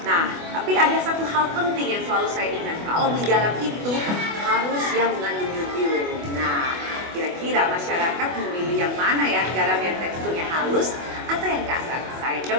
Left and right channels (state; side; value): late; left; 24 ms